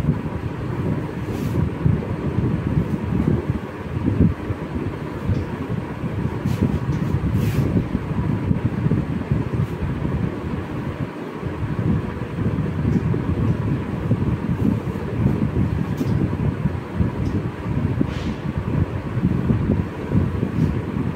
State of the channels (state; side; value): identical; both; correlation 1.00